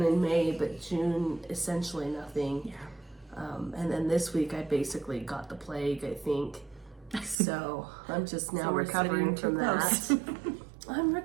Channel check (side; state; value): left; drops out; at 7.4 s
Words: in May, but June essentially nothing. Yeah. And then this week I basically got the plague, I think. So I'm just now recovering from that. I'm